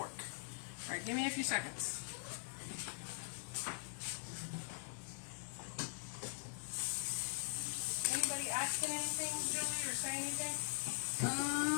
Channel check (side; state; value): right; silent; digital silence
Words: Alright, give me a few seconds. Anybody asking anything, Julie, or saying anything?